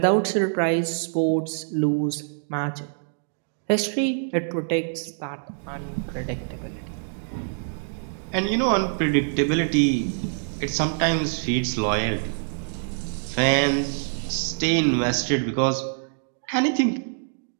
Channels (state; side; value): silent; left; digital silence